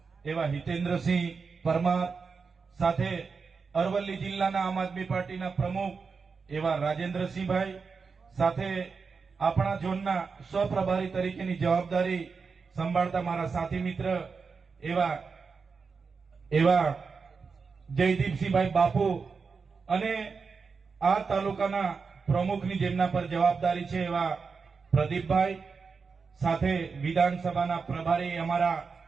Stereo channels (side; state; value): left; quieter; 5.1 dB